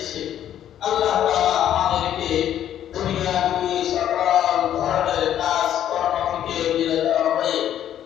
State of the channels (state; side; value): quieter; right; 10.8 dB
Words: আল্লাহ তাআলা আমাদেরকে দুনিয়াবি সকল ধরনের কাজ কর্ম থেকে বিরত হয়ে